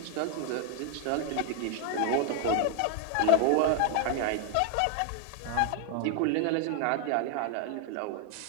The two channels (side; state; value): both; different; correlation 0.00